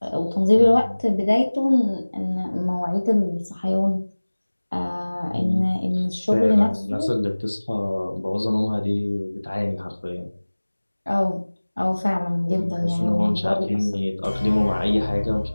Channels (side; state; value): both; inverted; correlation -1.00